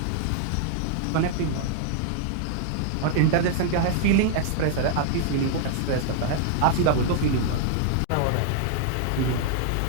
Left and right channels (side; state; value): both; different; correlation 0.00